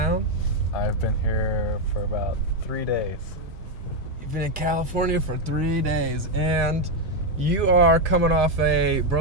I've been here for about 3 days. You've been in California for 3 days, and you are coming off a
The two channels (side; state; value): both; normal; correlation 0.04